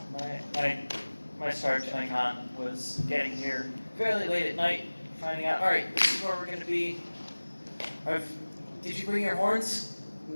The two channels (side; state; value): both; inverted; correlation -1.00